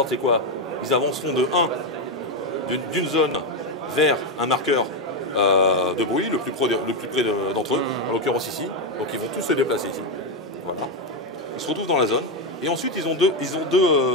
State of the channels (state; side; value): normal; both; correlation 0.07